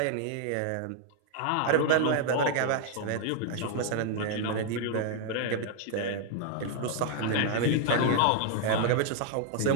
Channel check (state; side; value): different; both; correlation 0.00